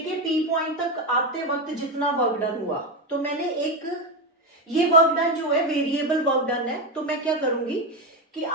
p पॉइंट तक आते वक्त जितना वर्क डन हुआ। तो मैंने एक ये वर्क डन जो है वेरिएबल वर्क डन है, तो मैं क्या करूंगी कि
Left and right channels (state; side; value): normal; both; correlation 0.12